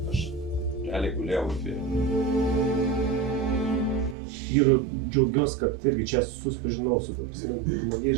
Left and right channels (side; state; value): left; drops out; at 4.2 s